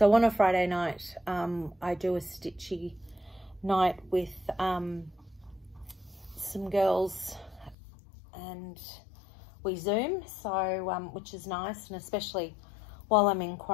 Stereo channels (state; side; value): drops out; right; at 7.8 s